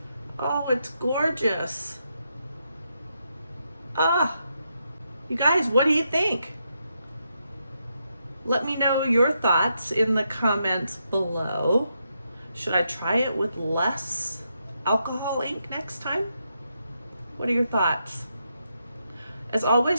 Oh, it's gorgeous. Ah, you guys, what do you think? Let me know your thoughts in the comments below. Should I try it with less alcohol ink next time? What are your thoughts? As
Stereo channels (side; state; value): both; inverted; correlation -0.82